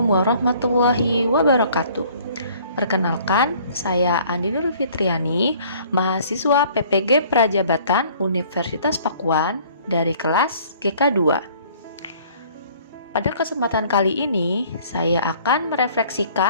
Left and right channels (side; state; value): both; inverted; correlation -0.55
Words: warahmatullahi wabarakatuh. Perkenalkan, saya Andi Nur Fitriani, mahasiswa PPG Prajabatan Universitas Pakuan dari kelas GK2. Pada kesempatan kali ini, saya akan